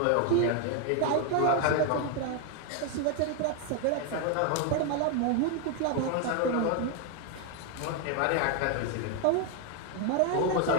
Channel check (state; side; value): different; both; correlation 0.01